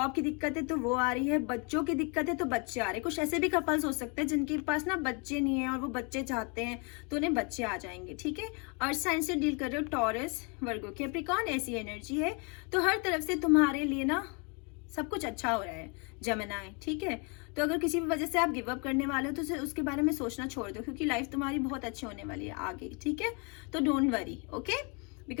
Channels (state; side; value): quieter; right; 33.7 dB